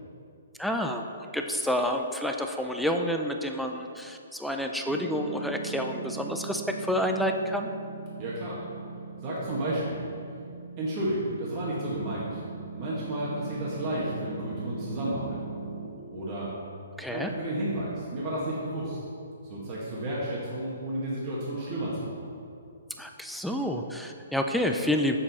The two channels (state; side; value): normal; both; correlation -0.02